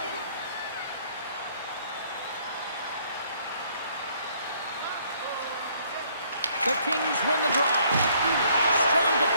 The Kings win the draw. Strong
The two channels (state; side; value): inverted; both; correlation -0.64